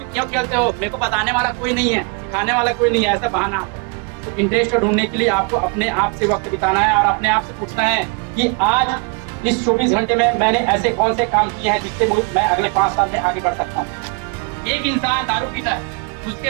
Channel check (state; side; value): quieter; left; 34.6 dB